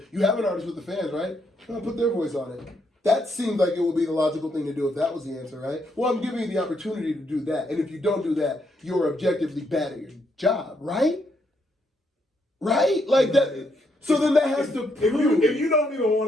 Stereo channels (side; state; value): both; normal; correlation 0.76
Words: you have an artist with the fans, right? Put their voice on it. That seems like it would be the logical thing to do if that was the answer, right? Well, I'm giving you the opportunity to do that. And if you don't do that, you're objectively bad at your job, right? Right? Like that. So then that has to prove. If you don't even